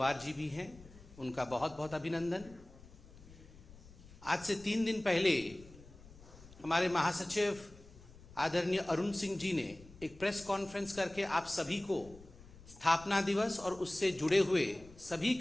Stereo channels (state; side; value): noise; left; rumble, 20 dB below the sound